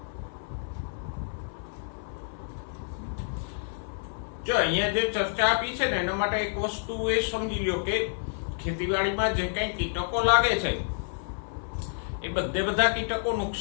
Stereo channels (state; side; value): silent; right; 59 dB below the other